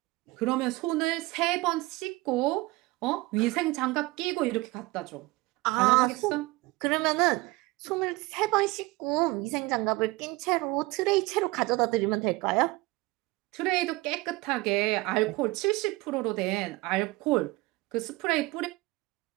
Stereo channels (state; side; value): quieter; left; 21.5 dB